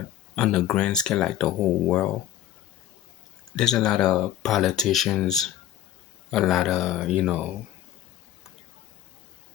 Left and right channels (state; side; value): quieter; right; 11.9 dB